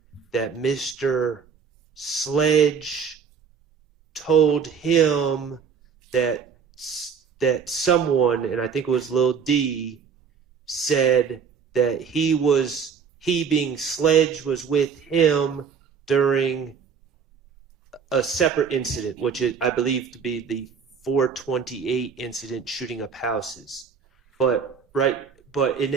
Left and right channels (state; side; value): quieter; left; 6.4 dB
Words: that Mr. Sledge told him that someone, and I think it was Lil D, said that he being Sledge was with him during a separate incident, which is, I believe to be the 428 incident shooting up houses. But in